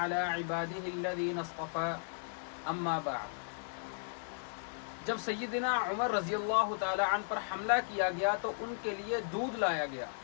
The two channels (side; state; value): right; silent; digital silence